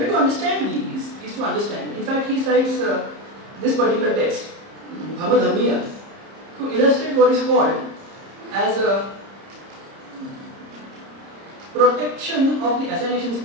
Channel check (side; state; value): left; late; 30 ms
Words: to understand these is to understand. In fact, he cites this particular text, Bhamadhammiya, to illustrate what is called as a protection of the assignation